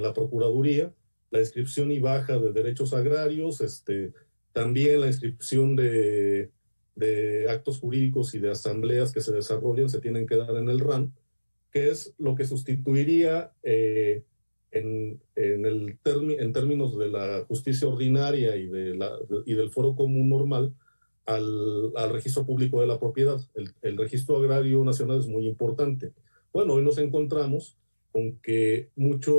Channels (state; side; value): inverted; both; correlation -1.00